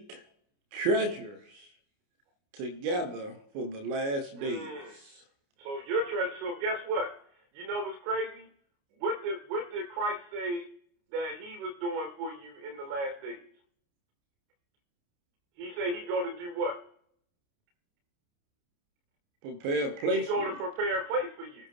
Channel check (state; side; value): late; left; 29 ms